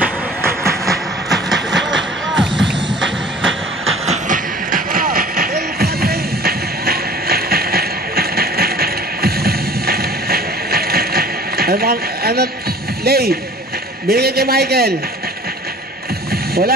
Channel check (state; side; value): normal; both; correlation 0.47